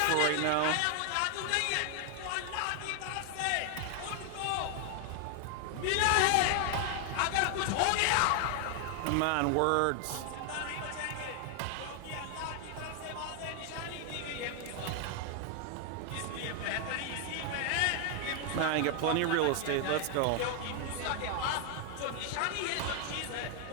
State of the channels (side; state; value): both; different; correlation 0.00